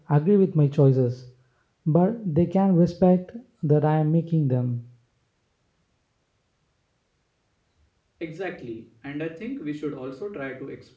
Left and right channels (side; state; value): both; identical; correlation 1.00